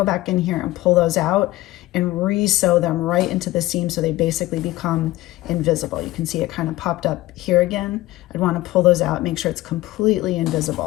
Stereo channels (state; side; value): quieter; right; 17.5 dB